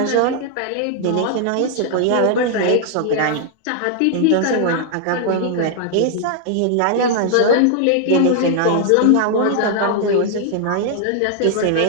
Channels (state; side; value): different; both; correlation 0.00